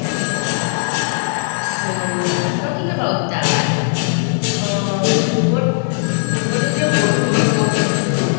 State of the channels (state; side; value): silent; right; digital silence